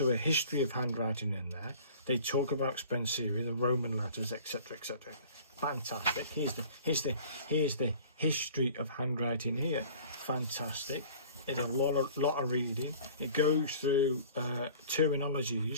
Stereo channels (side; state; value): both; inverted; correlation -0.46